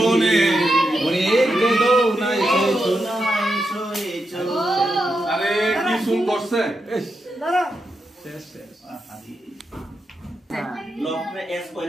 ওরে গেলো না এসো আরে কি শুন করছে এস দাঁড়া শেষ লক মে এস কই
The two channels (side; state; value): both; normal; correlation 0.86